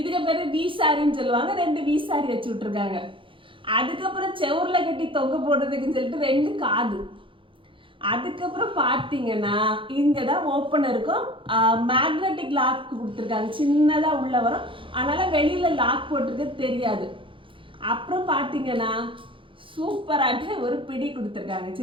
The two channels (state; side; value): late; left; 0.25 ms